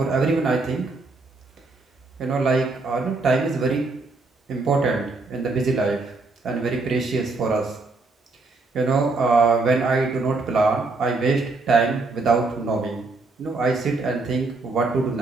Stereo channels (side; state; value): left; quieter; 3.6 dB